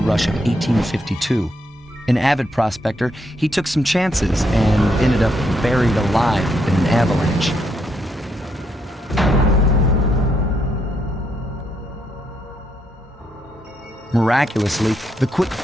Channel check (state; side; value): normal; both; correlation 0.77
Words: rush of 1852. An avid prospector, he took some chances and ended up buried alive in an avalanche. Miraculously, the quick